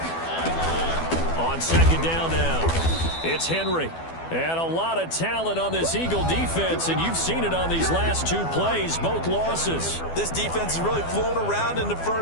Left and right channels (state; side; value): late; right; 12 ms